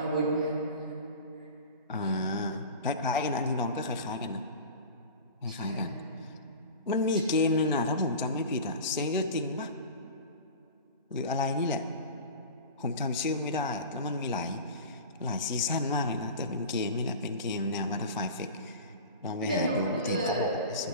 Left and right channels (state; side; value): inverted; both; correlation -0.34